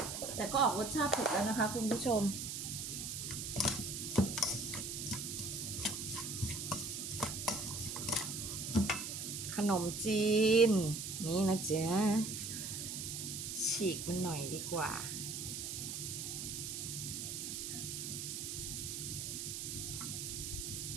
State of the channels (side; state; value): right; noise; hiss, 5 dB below the sound